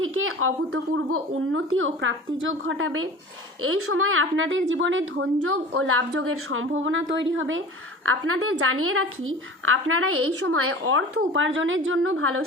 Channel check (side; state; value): both; normal; correlation 0.39